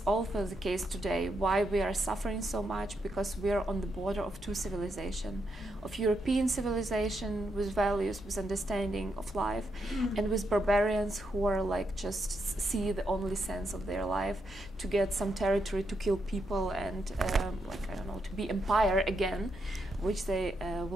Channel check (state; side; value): normal; both; correlation 0.81